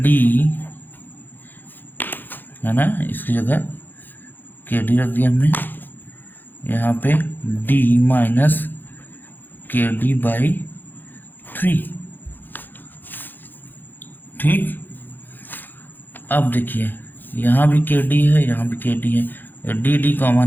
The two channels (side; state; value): right; late; 0.090 ms